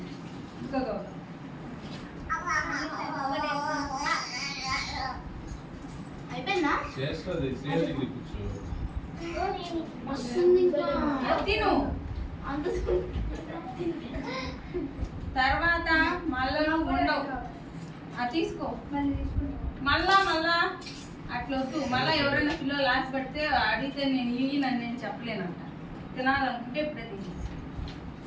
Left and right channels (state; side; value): identical; both; correlation 1.00